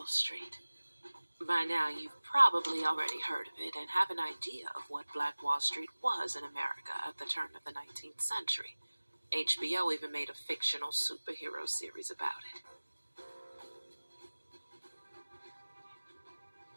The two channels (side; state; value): both; inverted; correlation -1.00